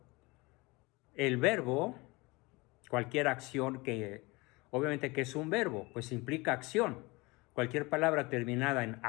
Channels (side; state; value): right; quieter; 24.3 dB